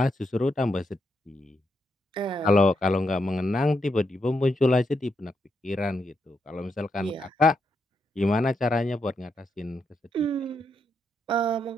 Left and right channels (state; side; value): normal; both; correlation 0.81